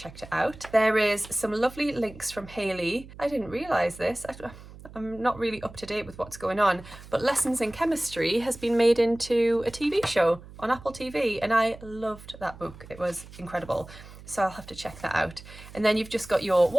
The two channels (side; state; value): right; noise; hum, 18 dB below the sound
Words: it out. There is some lovely links from Hayley. I didn't realise this. I'm not really up to date with what's going on, but Lessons in Chemistry has been made into a TV show on Apple TV and I loved that book. It was incredible. So I'll have to check that out. And then you've just got your